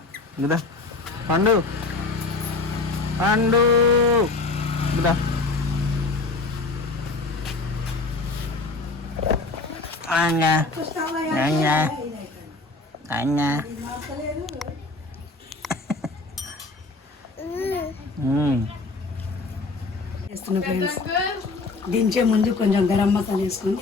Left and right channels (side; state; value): right; quieter; 3.5 dB